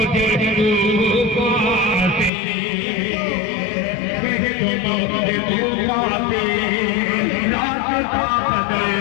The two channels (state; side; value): drops out; right; at 2.3 s